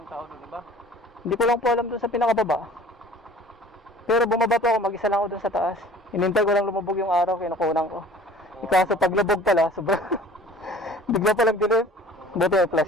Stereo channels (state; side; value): normal; both; correlation 0.47